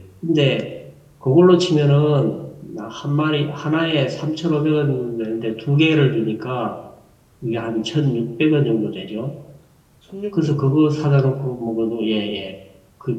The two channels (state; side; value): identical; both; correlation 1.00